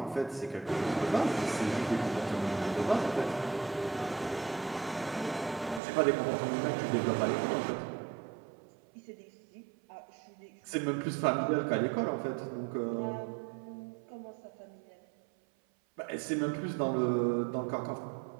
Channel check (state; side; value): drops out; left; at 5.8 s